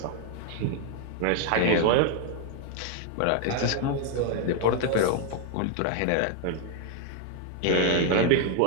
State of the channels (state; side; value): different; both; correlation 0.00